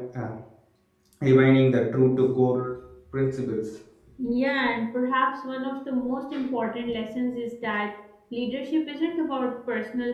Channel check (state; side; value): identical; both; correlation 1.00